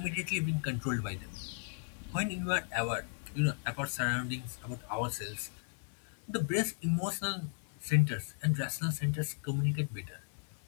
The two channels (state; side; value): silent; right; 54 dB below the other